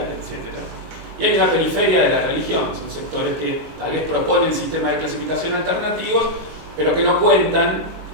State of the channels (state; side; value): late; left; 19 ms